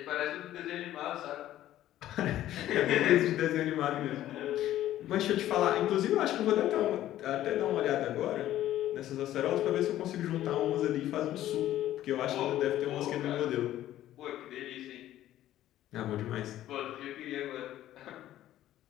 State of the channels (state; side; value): quieter; right; 13.3 dB